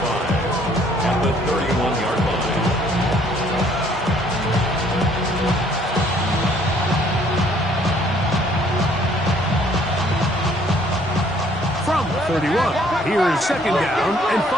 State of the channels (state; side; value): normal; both; correlation 0.62